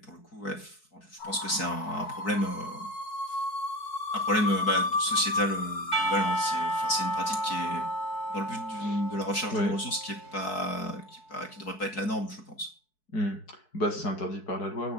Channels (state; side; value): late; right; 4.6 ms